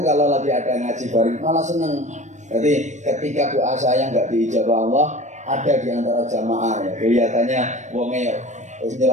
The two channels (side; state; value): left; late; 0.34 ms